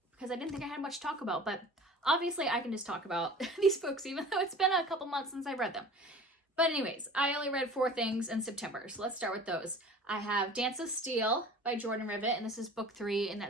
because I didn't think I had much to talk about, but obviously I can just talk about these books, even though it's been a couple months since I've read them. But anyways, I only read 4 things in September, so let's start with those. I have Dance of Steel by Jordan Rivet, and this is book 3 in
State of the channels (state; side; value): normal; both; correlation 0.42